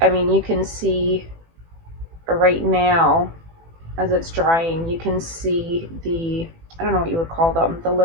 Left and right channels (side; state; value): left; late; 18 ms